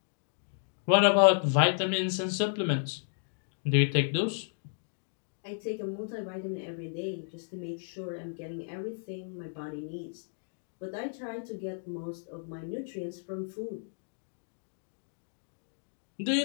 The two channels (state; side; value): silent; right; digital silence